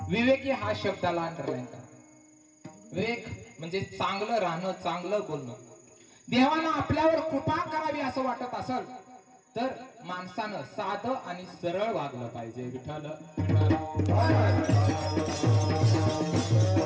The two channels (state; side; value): identical; both; correlation 1.00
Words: विवेकी हा शब्दाला अंडरलाईन करा. विवेक म्हणजे चांगलं राहणं, चांगलं बोलणं. देवानं आपल्यावर कृपा करावी असं वाटत असेल तर माणसानं साधं आणि सरळ वागलं पाहिजे. विठ्ठल